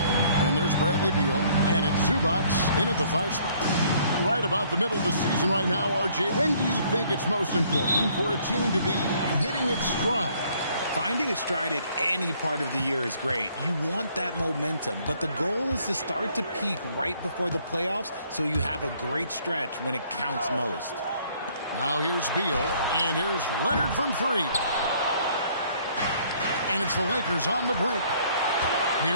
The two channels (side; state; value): both; inverted; correlation -0.62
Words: And there's Bradley Beal. And it's Zubac in at the 5 spot. Right about the middle of the season right now, RJ. When do you think it's most important for a team to be hitting its stride? Finding its stride at any part of the year is great. You want that momentum, but the goal is to start to peak right before the playoffs so you have a great stretch when it counts most. Now here's Beal, and here's Leonard from 3. And it's the Lakers on the brink.